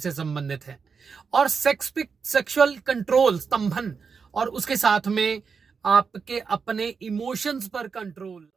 संबंधित है, और सेक्सुअल कंट्रोल, स्तंभन, और उसके साथ में आपके अपने इमोशंस पर कंट्रोल।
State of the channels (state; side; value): quieter; left; 5.6 dB